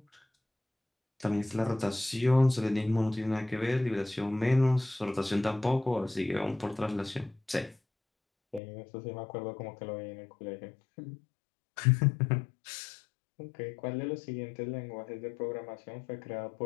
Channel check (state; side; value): drops out; right; at 8.6 s